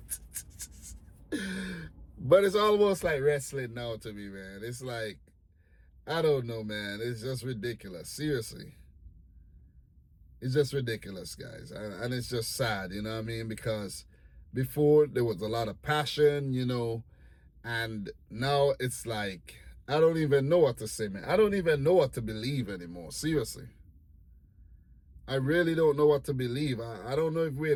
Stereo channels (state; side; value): identical; both; correlation 1.00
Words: But it's almost like wrestling now to me, man. It's like, I don't know, man. It's just ridiculous. Seriously. It's just ridiculous, guys. And it's just sad, you know what I mean? Because before there was a lot of passion, and now it's like, I don't even know what to say, man. I don't even know what to believe anymore. Seriously. I really don't know what to believe. I don't know if we're